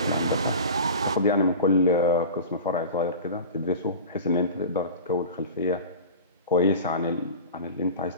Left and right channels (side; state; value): both; inverted; correlation -0.34